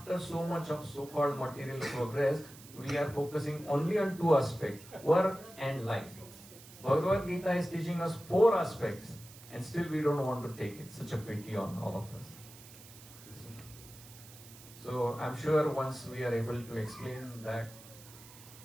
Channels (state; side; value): noise; right; hiss, 19 dB below the sound